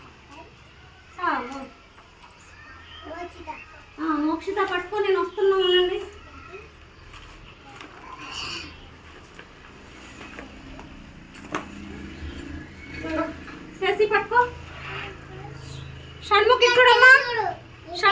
మోక్షిత పట్టుకో. నేను వస్తున్నా ఉండండి. శశి పట్టుకో. షణ్ముఖి చూడమ్మా.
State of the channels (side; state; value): both; identical; correlation 1.00